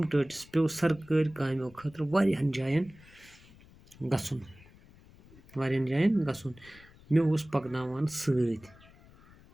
ٹٲٹِس پیوٚو سرکٲرۍ کامیو خٲطرٕ واریاہَن جایَن گژھُن مےٚ اوس پَکناوان سۭتۍ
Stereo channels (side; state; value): left; noise; rumble, 24 dB below the sound